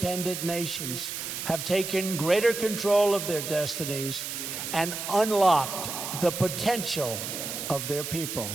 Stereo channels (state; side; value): noise; right; hiss, 5 dB below the sound